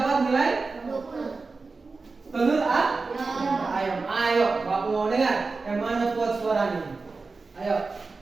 nilai 20. Telur ayo Bapak mau dengar yang mana kuat suaranya. Ayo.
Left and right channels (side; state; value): left; quieter; 4.0 dB